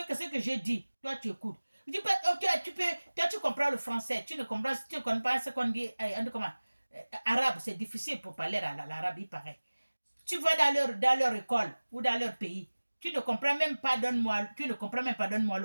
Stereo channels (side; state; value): both; inverted; correlation -1.00